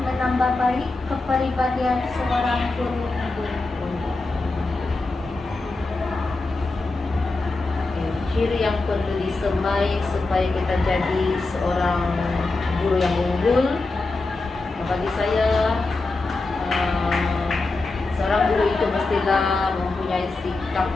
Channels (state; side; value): quieter; right; 3.4 dB